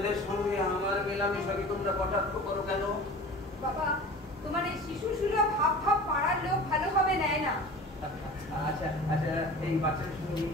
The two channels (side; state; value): both; normal; correlation 0.38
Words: সঙ্গে আমার মেলামেশাকে তোমরা কটাক্ষ করো কেন? বাবা, তোমার এই শিশু সুলভ ভাব ভাব পাড়ার লোক ভালোভাবে নেয় না। আচ্ছা আচ্ছা, এই বাচ্চাদের সঙ্গে